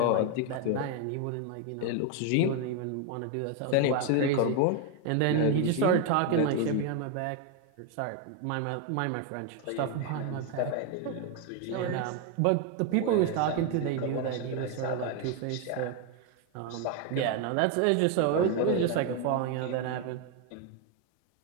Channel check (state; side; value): different; both; correlation 0.01